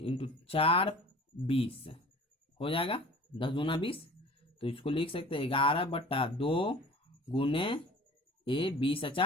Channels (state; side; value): normal; both; correlation 0.44